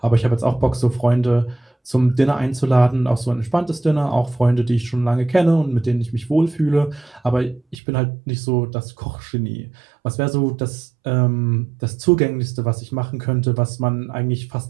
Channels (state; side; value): drops out; left; at 7.8 s